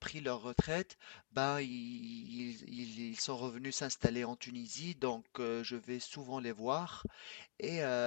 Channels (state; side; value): silent; right; digital silence